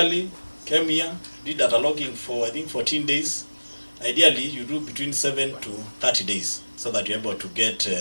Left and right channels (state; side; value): inverted; both; correlation -1.00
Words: came here, did data logging for, I think, 14 days. Ideally, you do between 7 to 30 days so that you're able to get